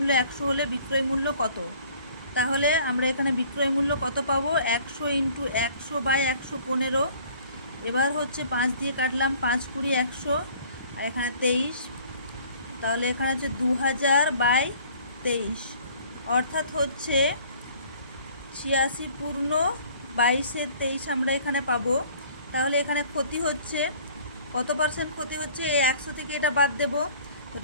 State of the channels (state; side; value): inverted; both; correlation -0.53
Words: 100 হলে বিক্রয় মূল্য কত? তাহলে আমরা এখানে বিক্রয় মূল্য কত পাবো? 100 × 100/115। এবার হচ্ছে 5 দিয়ে কাটলাম, 5 × 20 100, আর এখানে 23। তাহলে এখানে হচ্ছে 2000/23, অর্থাৎ হচ্ছে 86 পূর্ণ 22-23 আমরা এখানে পাবো। তাহলে এখানে ক্ষতি হচ্ছে কত পার্সেন্ট ক্ষতি হচ্ছে? এই 100 থেকে এটা বাদ দেব। তো